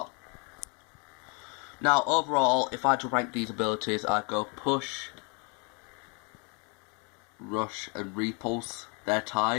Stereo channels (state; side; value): quieter; right; 34.6 dB